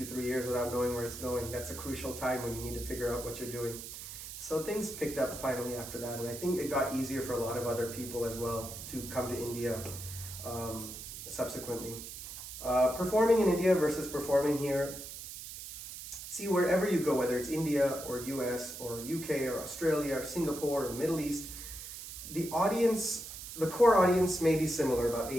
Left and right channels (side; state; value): right; noise; hiss, 10 dB below the sound